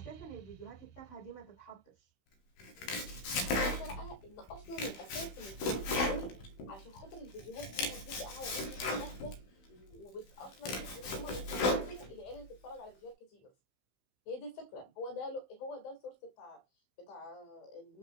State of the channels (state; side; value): late; right; 15 ms